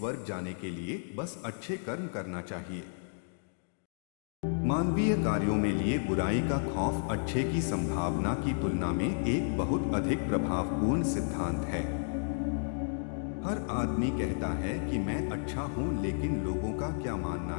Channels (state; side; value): silent; right; digital silence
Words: जाने के लिए बस अच्छे कर्म करना चाहिए। मानवीय कार्यों में लिए बुराई का खौफ अच्छे की संभावना की तुलना में एक बहुत अधिक प्रभावपूर्ण सिद्धांत है। हर आदमी कहता है कि मैं अच्छा हूं, लेकिन लोगों का क्या मानना